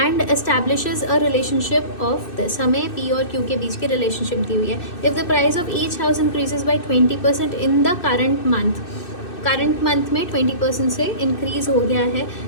establishes a relationship of this. हमें पी और क्यू के बीच की रिलेशनशिप दी हुई है. If the price of each house increases by 20% in the current month में 20% से इंक्रीज हो गया है,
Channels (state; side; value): late; right; 2.6 ms